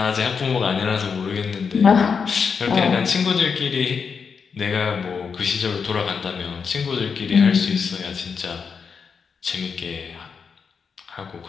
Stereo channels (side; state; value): right; quieter; 5.9 dB